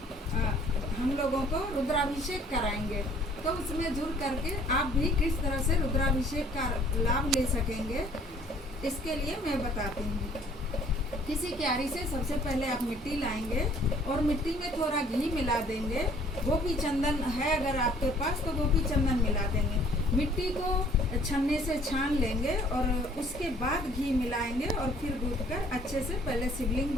हम लोगों को रुद्राभिषेक कराएंगे, तो उसमें जुड़ करके आप भी किस तरह से रुद्राभिषेक का लाभ ले सकेंगे इसके लिए मैं बताती हूँ। किसी क्यारी से सबसे पहले आप मिट्टी लाएंगे और मिट्टी में थोड़ा घी मिला देंगे। गोपी चंदन है अगर आपके पास तो गोपी चंदन मिला देंगे। मिट्टी को छन्ने से छान लेंगे और उसके बाद घी मिलाएंगे और फिर गूंथ कर अच्छे से पहले शिवलिंग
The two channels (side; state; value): both; normal; correlation 0.57